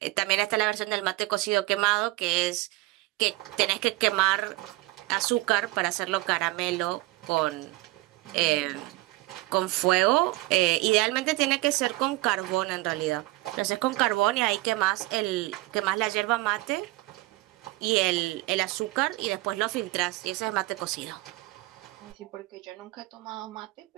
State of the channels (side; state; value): left; quieter; 20.7 dB